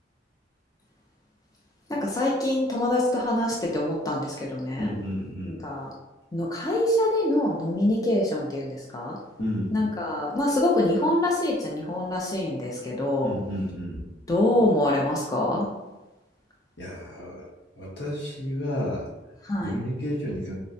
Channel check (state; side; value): normal; both; correlation 0.58